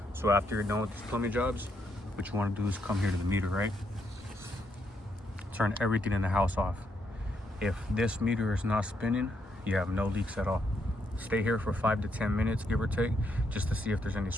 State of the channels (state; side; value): normal; both; correlation 0.77